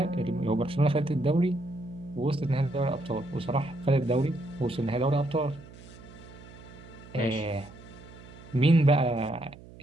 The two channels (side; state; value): right; noise; hum, 19 dB below the sound